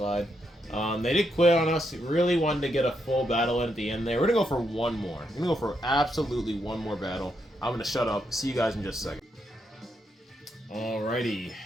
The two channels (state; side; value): normal; both; correlation 0.80